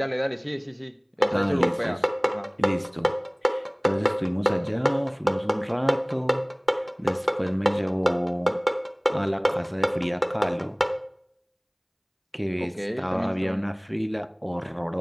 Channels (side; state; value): both; identical; correlation 1.00